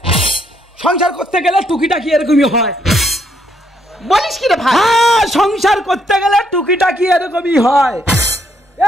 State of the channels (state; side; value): normal; both; correlation 0.72